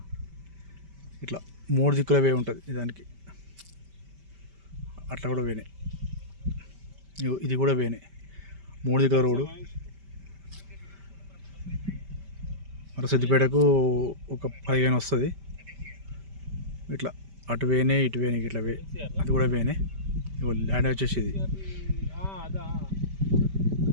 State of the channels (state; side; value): late; left; 5.1 ms